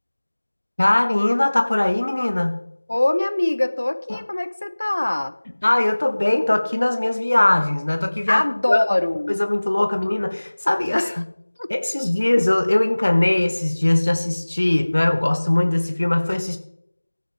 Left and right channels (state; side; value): inverted; both; correlation -1.00